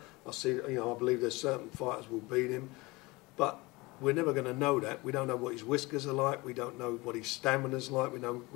I see, you know, I believe there's certain fighters will beat him, but we're never going to know that. We don't know what his whiskers are like. We don't know what his stamina's like. We don't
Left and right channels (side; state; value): right; quieter; 23.3 dB